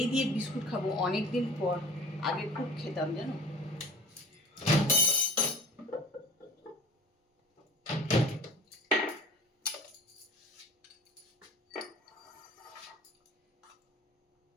দিয়ে বিস্কুট খাবো, অনেক দিন পর, আগে খুব খেতাম জানো।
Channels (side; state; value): both; normal; correlation 0.42